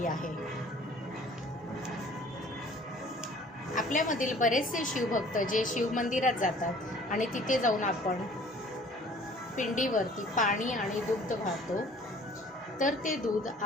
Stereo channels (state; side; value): normal; both; correlation 0.52